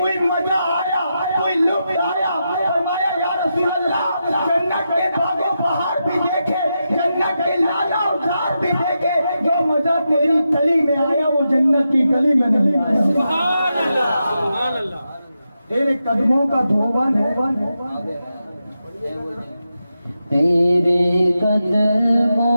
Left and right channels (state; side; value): inverted; both; correlation -0.87